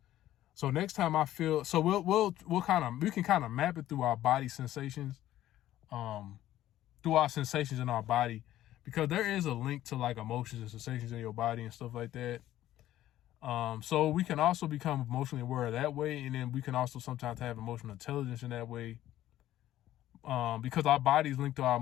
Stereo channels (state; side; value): quieter; right; 13.5 dB